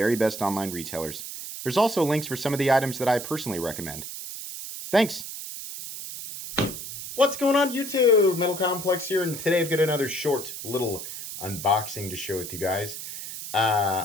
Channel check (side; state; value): right; noise; hiss, 9 dB below the sound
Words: best online retailers. There's also links for some of the items that I personally recommend. Thanks! What's going on YouTube? Metal Complex here, and today I've got another short little unboxing to share with you guys.